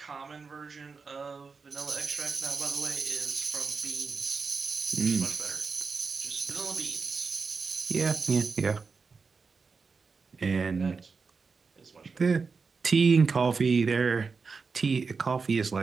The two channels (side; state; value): left; quieter; 4.9 dB